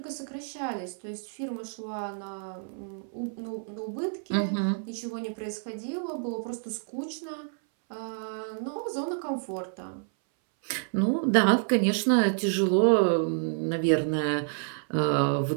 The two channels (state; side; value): silent; left; 59 dB below the other